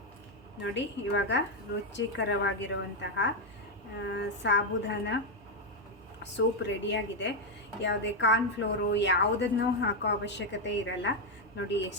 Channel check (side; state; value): both; normal; correlation 0.03